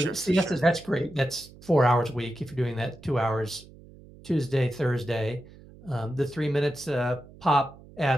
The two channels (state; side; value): noise; right; hum, 21 dB below the sound